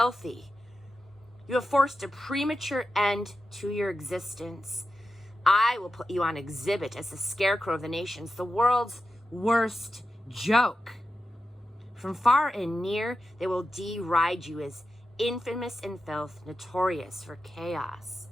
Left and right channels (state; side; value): normal; both; correlation 0.91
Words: You have forced a premature end to your existence. I will put you on exhibit as the scarecrow of the nations, the world's worst joke. From far and near, they will deride you as infamous in filth, notorious for chaos.